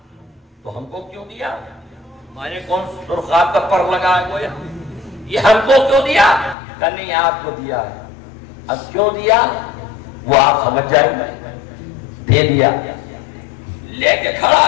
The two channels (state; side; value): drops out; right; at 6.6 s